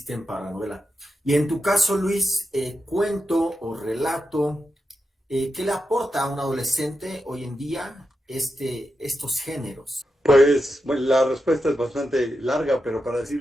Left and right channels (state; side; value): normal; both; correlation 0.88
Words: para la novela. Y en tu caso, Luis, cuento o relato, ¿qué le aporta a un adolescente hoy en día estos géneros? Pues bueno, la respuesta es bastante larga, pero para